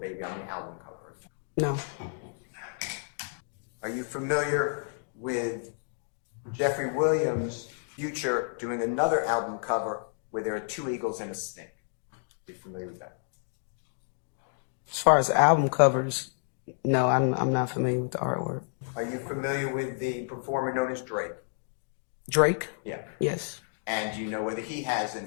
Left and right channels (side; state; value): right; silent; digital silence